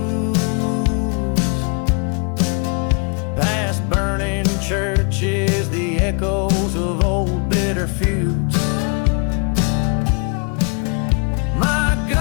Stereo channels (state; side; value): quieter; right; 36.4 dB